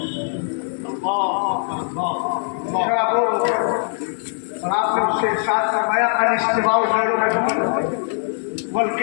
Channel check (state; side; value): silent; right; 58 dB below the other